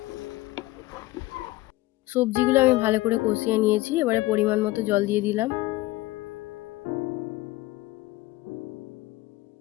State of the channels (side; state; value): right; quieter; 18.7 dB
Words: সবজিগুলো আমি ভালো করে কষিয়ে নিয়েছি, এবারে পরিমাণ মতো জল দিয়ে দিলাম।